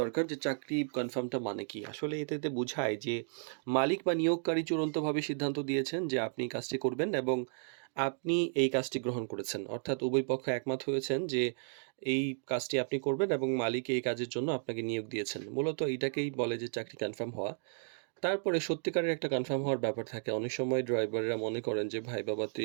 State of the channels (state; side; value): silent; left; digital silence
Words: দরকার যে চাকরি কনফার্মটা মানে কি। আসলে এটাতে বোঝায় যে মালিক বা নিয়োগকারী চূড়ান্তভাবে সিদ্ধান্ত দিয়েছেন যে আপনি কাজটি করবেন এবং আপনি এই কাজটি গ্রহণ করেছেন। অর্থাৎ উভয় পক্ষ একমত হয়েছেন যে এই কাজটি আপনি করবেন এবং মালিক এই কাজের জন্য আপনাকে নিয়োগ দিয়েছেন। মূলত এটাকেই বলে যে চাকরি কনফার্ম হওয়া। তারপরে সত্যিকারের একটা কনফার্ম হওয়ার ব্যাপার থাকে। অনেক সময় ড্রাইভাররা মনে করেন যে ভাই বাবা